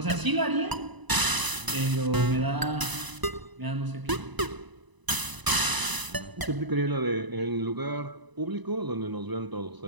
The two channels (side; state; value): left; late; 1.0 ms